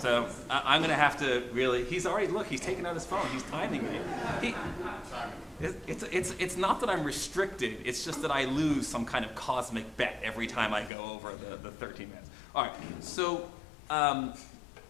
So I'm going to have to really, he's taken out his phone. He's timing me. It's not that I'm restricted. It's just that I lose some kind of cosmic bet every time I go over the 13 minutes. All right, so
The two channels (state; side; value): drops out; right; at 10.9 s